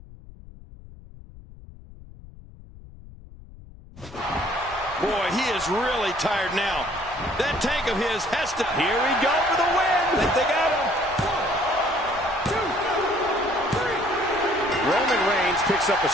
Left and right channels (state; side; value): noise; left; rumble, 19 dB below the sound